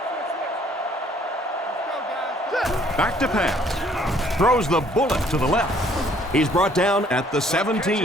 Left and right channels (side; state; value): both; normal; correlation 0.61